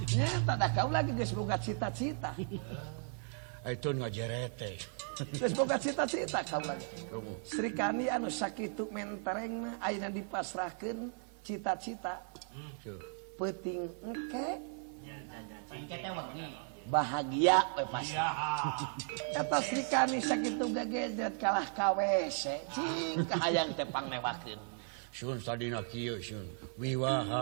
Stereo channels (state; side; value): silent; left; 54 dB below the other